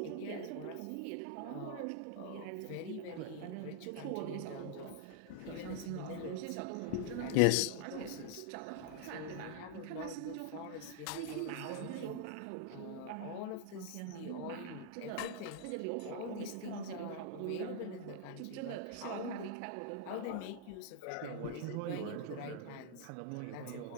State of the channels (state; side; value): different; both; correlation -0.01